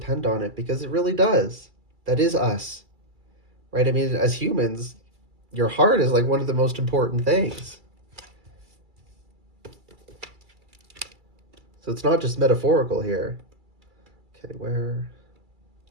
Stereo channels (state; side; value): late; left; 2.3 ms